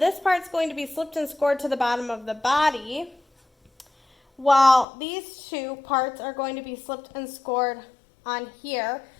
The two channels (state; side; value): drops out; right; at 4.9 s